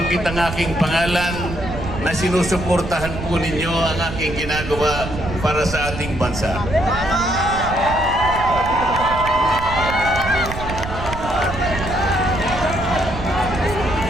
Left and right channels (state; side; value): noise; right; rumble, 8 dB below the sound